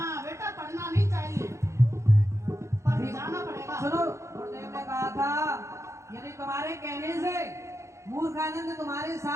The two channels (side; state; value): left; late; 0.14 ms